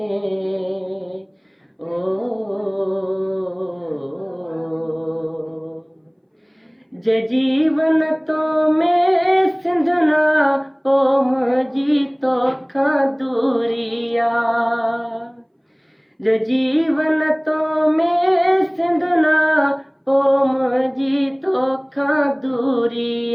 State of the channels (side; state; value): both; identical; correlation 1.00